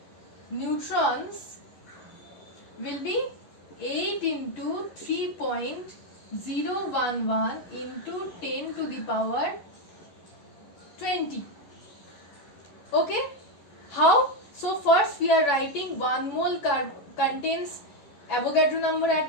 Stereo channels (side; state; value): right; late; 10 ms